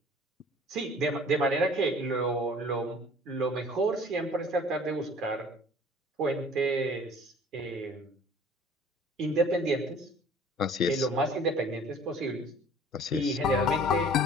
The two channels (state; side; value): normal; both; correlation 0.50